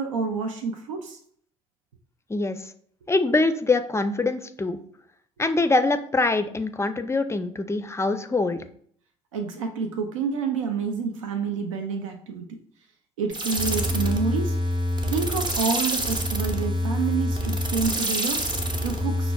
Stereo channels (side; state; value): both; normal; correlation 0.53